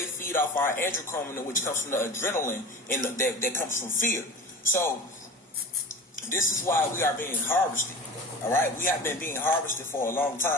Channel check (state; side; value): normal; both; correlation 0.35